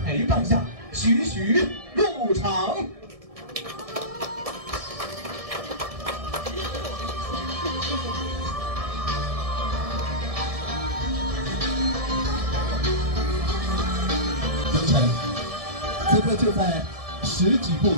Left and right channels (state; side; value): late; left; 1.7 ms